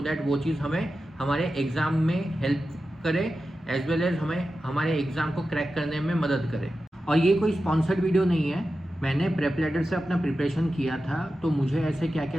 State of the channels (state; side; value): normal; both; correlation 0.92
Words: दैट वो चीज़ हमें हमारे एग्ज़ाम में हेल्प करे, एज वेल एज हमें हमारे एग्ज़ाम को क्रैक करने में मदद करे। और ये कोई स्पॉन्सर्ड वीडियो नहीं है, मैंने प्रेप लैडर से अपना प्रिपरेशन किया था, तो मुझे ऐसे क्या